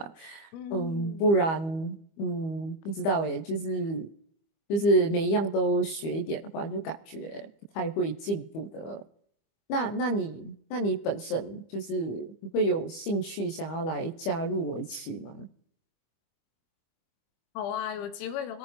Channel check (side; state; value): right; late; 25 ms